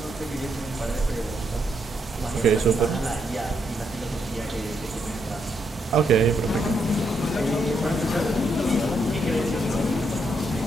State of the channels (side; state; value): both; normal; correlation 0.77